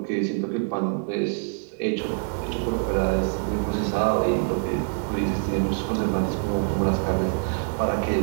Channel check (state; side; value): silent; left; 62 dB below the other